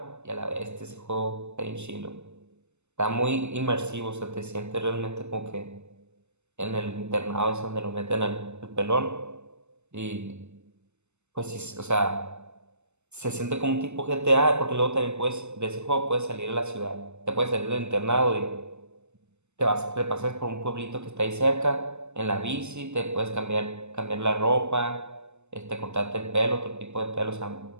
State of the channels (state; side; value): late; left; 0.83 ms